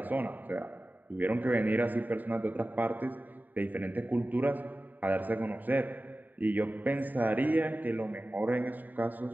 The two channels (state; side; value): late; left; 0.087 ms